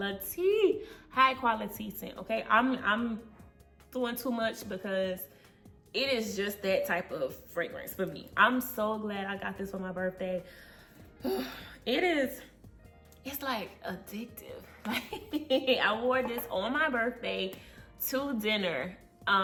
scent, okay? I'm doing too much because it is just that type of fragrance for me. I'm so glad I got this for my birthday. It's like addictive. I wore this on my birthday to dinner.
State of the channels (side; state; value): both; identical; correlation 1.00